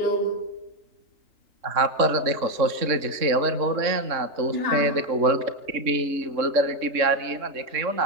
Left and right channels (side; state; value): left; late; 3.6 ms